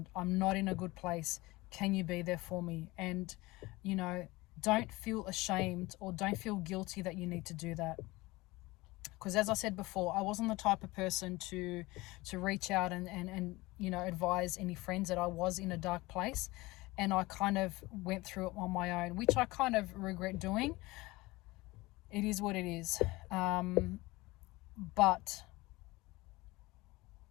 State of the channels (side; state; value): right; quieter; 21.2 dB